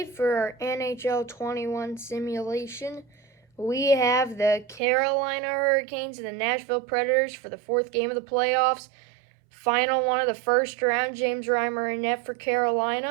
for our NHL 21 simulation, we have the Carolina Hurricanes and the Nashville Predators for the fourth game of the playoffs. Final one of the first round, James Reimer in net for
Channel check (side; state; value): left; drops out; at 4.8 s